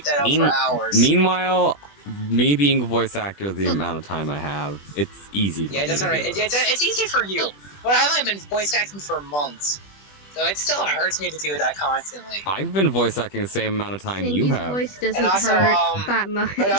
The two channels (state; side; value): late; right; 20 ms